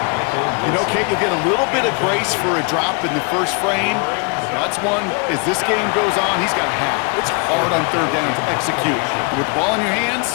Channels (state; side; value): quieter; right; 33.5 dB